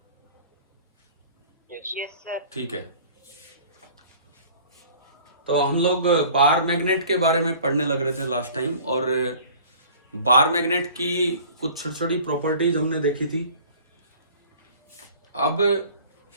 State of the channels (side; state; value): both; inverted; correlation -0.48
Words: Yes sir. ठीक है, तो हम लोग बार मैग्नेट के बारे में पढ़ने लग रहे थे लास्ट टाइम, और बार मैग्नेट की कुछ छोटी छोटी प्रॉपर्टीज हमने देखी थी। अब